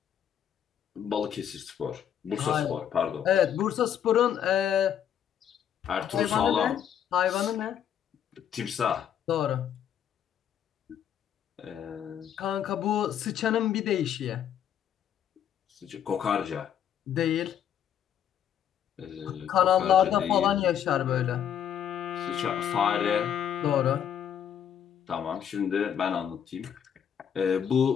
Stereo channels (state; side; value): quieter; right; 9.2 dB